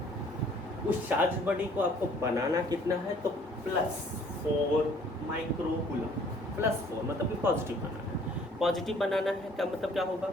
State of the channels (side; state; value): both; normal; correlation 0.57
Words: उस चार्ज बॉडी को आपको बनाना कितना है, तो +4 माइक्रोकूलम। +4 मतलब कि पॉजिटिव बनाना है। पॉजिटिव बनाना है क्या मतलब क्या होगा,